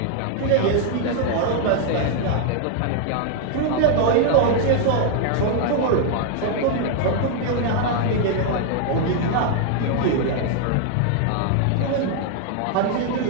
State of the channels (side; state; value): both; different; correlation 0.00